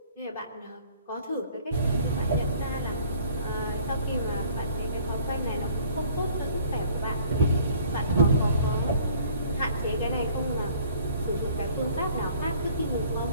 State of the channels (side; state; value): both; inverted; correlation -0.55